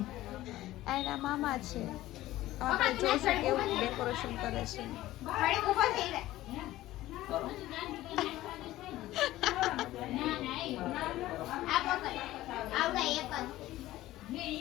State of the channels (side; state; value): right; quieter; 15.8 dB